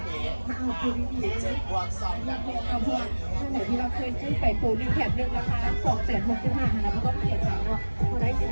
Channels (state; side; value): inverted; both; correlation -1.00